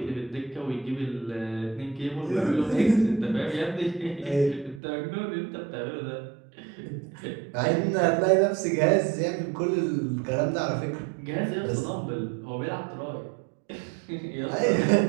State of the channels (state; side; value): drops out; left; at 4.8 s